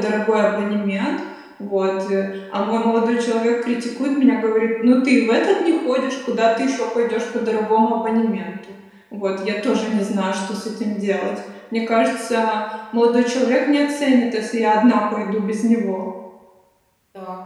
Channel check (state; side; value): identical; both; correlation 1.00